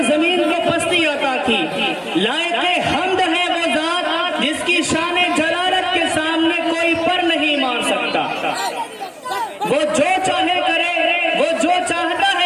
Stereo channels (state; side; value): identical; both; correlation 1.00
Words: زمین کو پستی عطا کی۔ لائق حمد ہے وہ ذات جس کی شان جلالت کے سامنے کوئی پر نہیں مار سکتا۔ وہ جو چاہے کرے، وہ جو چاہتا